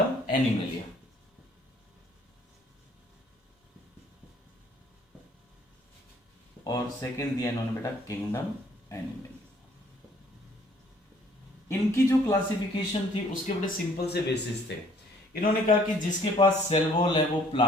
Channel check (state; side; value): normal; both; correlation 0.60